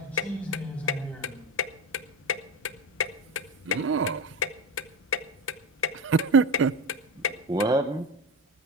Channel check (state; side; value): normal; both; correlation 0.20